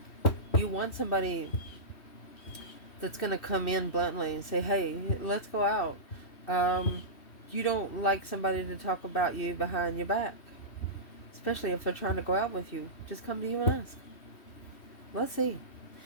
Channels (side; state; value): right; late; 3.1 ms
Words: You want somebody that's going to come in bluntly and say, hey, let's go out. Um, you don't like somebody to talk about you behind your back, especially if they're trying to go out with you. Just come to you and ask. Let's see.